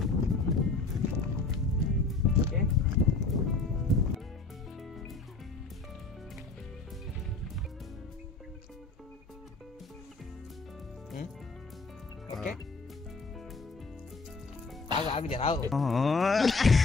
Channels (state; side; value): quieter; right; 3.8 dB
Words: ఓకే ఓకే ఆగు జరావు.